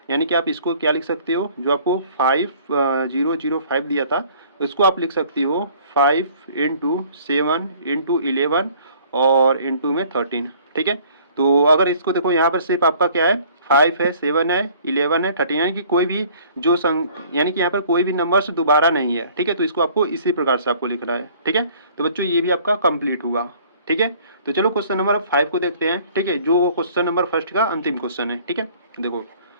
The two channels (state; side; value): inverted; both; correlation -0.54